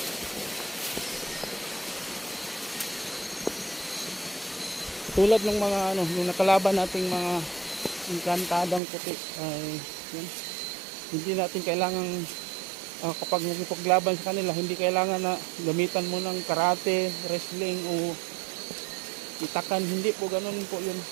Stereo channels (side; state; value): left; drops out; at 8.8 s